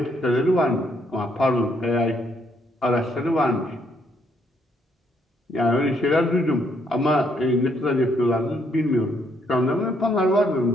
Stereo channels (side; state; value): both; normal; correlation 0.71